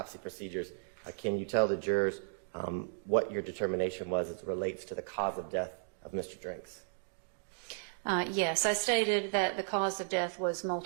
procedures, can you tell the jurors what your determination was as it relates to the cause of death of Mr. Drinks? Yes, I stated that the cause of death was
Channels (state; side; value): silent; left; digital silence